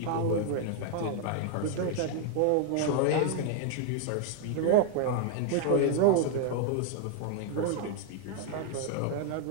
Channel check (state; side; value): different; both; correlation 0.00